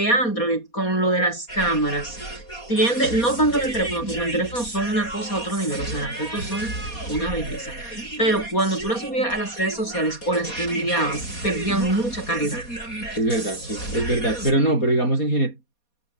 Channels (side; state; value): right; late; 4.2 ms